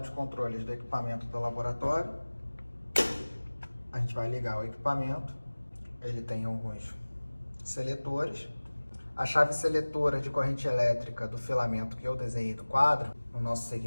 de controles do equipamento do laboratório. A gente vai ligar o equipamento. Ele tem alguns seletores. A chave seletora de corrente elétrica do filamento que eu desenhei do quadro, no nosso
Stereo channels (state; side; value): inverted; both; correlation -1.00